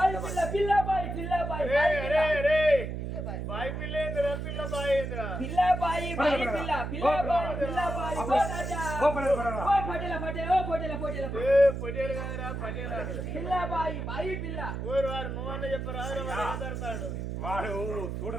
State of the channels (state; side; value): noise; right; hum, 5 dB below the sound